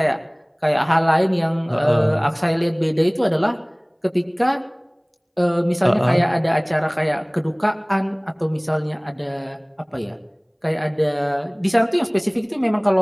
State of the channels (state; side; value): identical; both; correlation 1.00